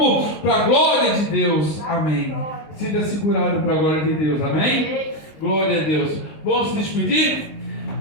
para a glória de Deus. Amém. Sinta segurado para a glória de Deus. Amém? Glória a Deus. Vamos se despedir?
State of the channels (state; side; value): late; right; 19 ms